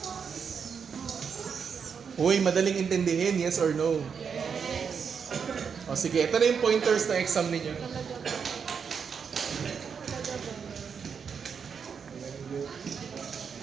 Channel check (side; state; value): left; quieter; 6.5 dB